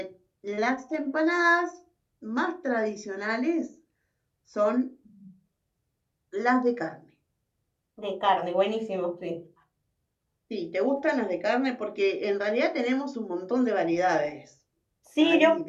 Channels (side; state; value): both; identical; correlation 1.00